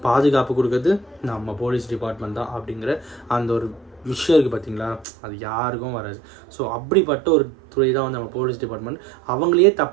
பாதுகாப்பு கொடுக்குறது நம்ம போலீஸ் டிபார்ட்மெண்ட் தான் அப்படிங்கிற அந்த ஒரு விஷயம் இருக்குது பார்த்தீங்களா, அது யாருக்கும் வராது. ஸோ அப்படிப்பட்ட ஒரு துறை தான் வந்து நம்ம போலீஸ் டிபார்ட்மெண்ட். அவங்களையே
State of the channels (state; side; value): drops out; left; at 5.1 s